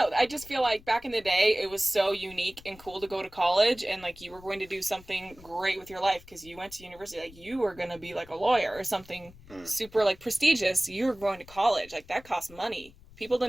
I just feel like back in the day, it was so unique and cool to go to college, and like you were going to do something great with your life because you went to university. Like you were going to be like a lawyer or something super like prestigious. You were going to college. Like that cost money. People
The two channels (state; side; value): noise; left; rumble, 22 dB below the sound